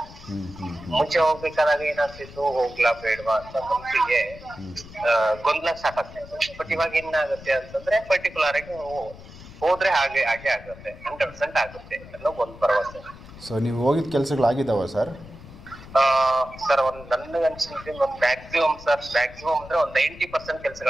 ಮುಂಚೆ ಹೋಗ್ಬೇಕಾದಾಗ ಏನಾಗ್ತಿತ್ತು, ಹೋಗ್ಲಾ ಬೇಡವಾ ಅಂತ ಮನ್ಸಿಗೆ ಗೊಂದಲ ಸಾಕಾಗ್ತಿತ್ತು. ಬಟ್ ಇವಾಗ ಏನಾಗುತ್ತೆ ಅಂತಂದ್ರೆ ಪರ್ಟಿಕ್ಯುಲರ್ ಆಗಿ ಹೋದ್ರೆ ಹಾಗೆ ಆಗುತ್ತೆ, 100% ಆಗುತ್ತೆ ಅನ್ನೋ ಒಂದು ಭರವಸೆ. ಸೊ ನೀವು ಹೋಗಿದ ಕೆಲಸಗಳಾಗಿದ್ದಾವ ಸರ್? ಸರ್ ನನಗೆ ಅನ್ಸಿದ್ರೆ ಒಂದು ಮ್ಯಾಕ್ಸಿಮಮ್ ಅಂದ್ರೆ ಒಂದು 90%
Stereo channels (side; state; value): left; noise; rumble, 17 dB below the sound